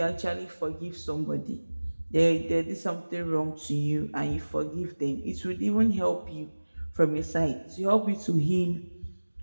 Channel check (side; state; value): both; inverted; correlation -1.00